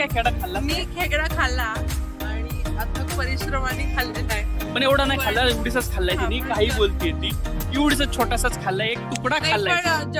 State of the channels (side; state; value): both; identical; correlation 1.00